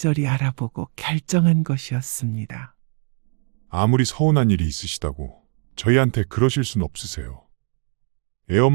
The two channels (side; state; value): left; quieter; 33.2 dB